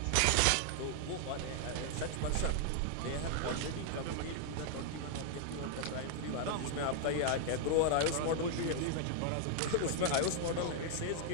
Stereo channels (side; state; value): both; different; correlation 0.00